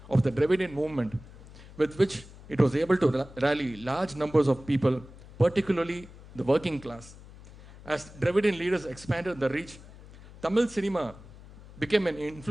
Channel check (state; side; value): noise; left; hum, 19 dB below the sound